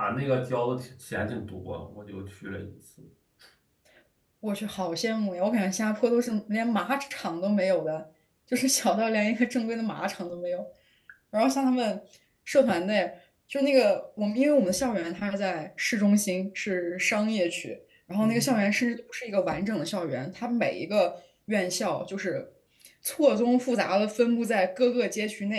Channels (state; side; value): identical; both; correlation 1.00